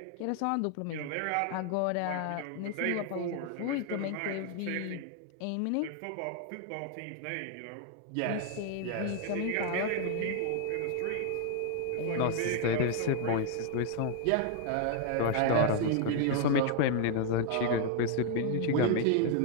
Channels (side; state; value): both; different; correlation 0.00